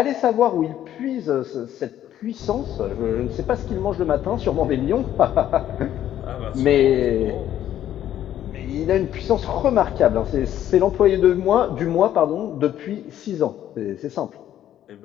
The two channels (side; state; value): right; quieter; 11.6 dB